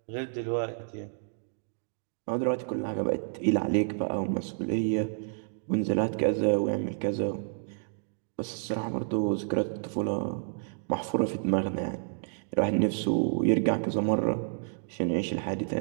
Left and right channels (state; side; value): silent; left; digital silence